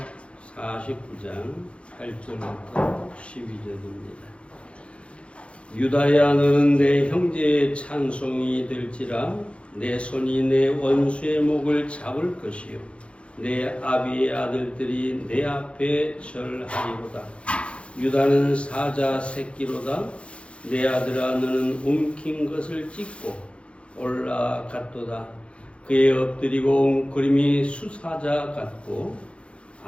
49장 8절부터 12절입니다. 유다야, 너는 내 형제의 찬송이 될지라. 내 손이 내 원수의 목을 잡을 것이요 내 아비의 아들들이 내 앞에 절하리로다. 유다는 사자 새끼로다. 내 아들아, 너는 움킨 것을 찢고 올라갔도다. 그의 엎드리고 웅크림이 수사자 같고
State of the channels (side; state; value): right; late; 0.060 ms